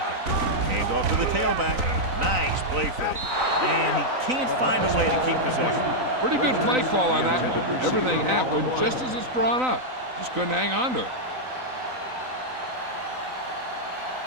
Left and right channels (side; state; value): left; late; 3.9 ms